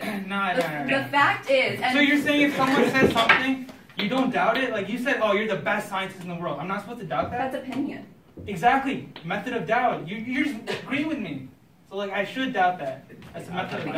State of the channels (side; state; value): both; identical; correlation 1.00